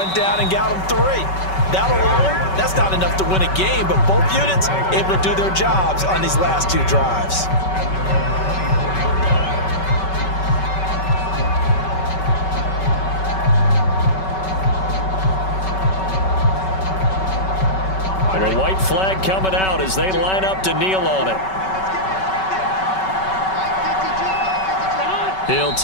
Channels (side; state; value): right; late; 5.3 ms